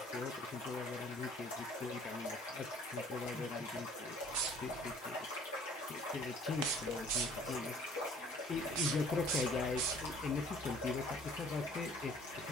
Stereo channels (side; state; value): both; normal; correlation 0.54